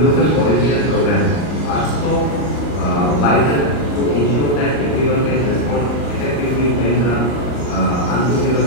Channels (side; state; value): right; late; 39 ms